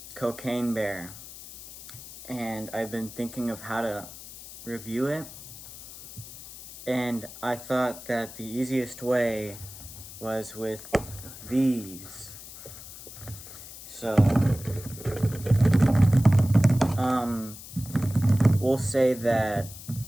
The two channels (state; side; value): noise; left; hiss, 15 dB below the sound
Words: Cocaine Bear, and I've been thinking of how to review it. And I thought that the easiest way was with these. So, we'll say that